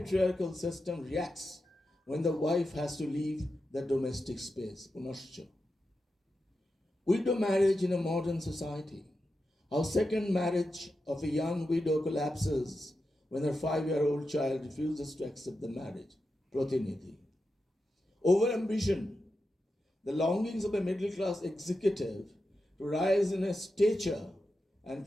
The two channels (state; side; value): normal; both; correlation 0.89